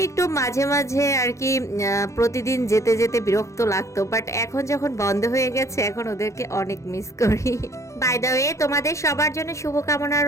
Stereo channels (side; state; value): right; late; 0.15 ms